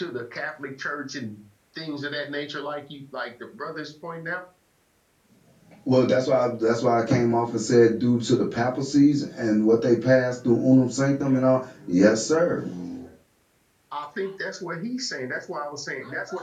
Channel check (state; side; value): identical; both; correlation 1.00